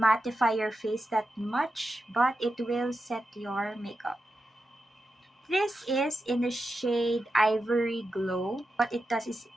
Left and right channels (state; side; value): normal; both; correlation 0.89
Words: your face that much, but it will set your makeup. This is in the shade Ivory Glow. What it does is